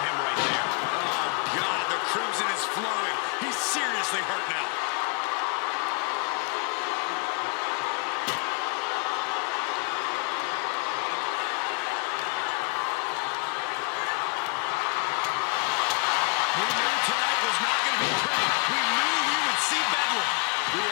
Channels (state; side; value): quieter; right; 34.9 dB